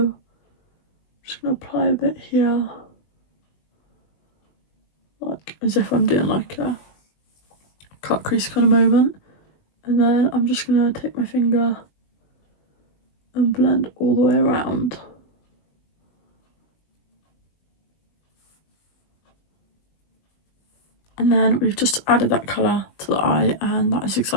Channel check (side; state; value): right; late; 20 ms